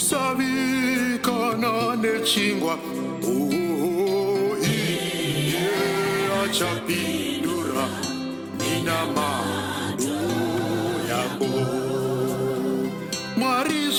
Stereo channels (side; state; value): both; identical; correlation 1.00